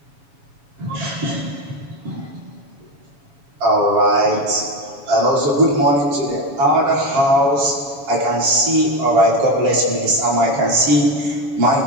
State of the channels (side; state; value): left; late; 7.1 ms